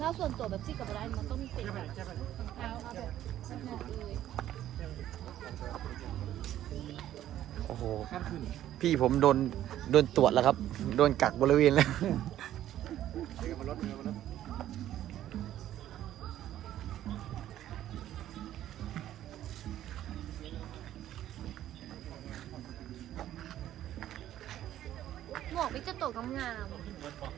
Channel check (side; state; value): left; quieter; 12.4 dB